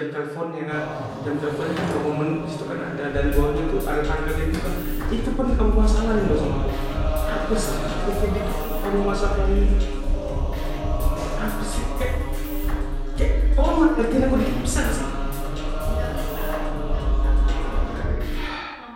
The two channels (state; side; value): identical; both; correlation 1.00